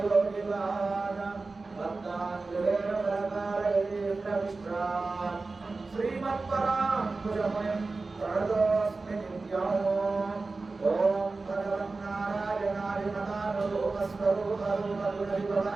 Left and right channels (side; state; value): left; quieter; 3.7 dB